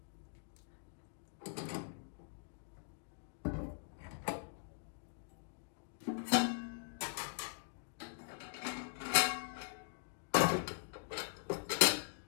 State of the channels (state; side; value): silent; right; digital silence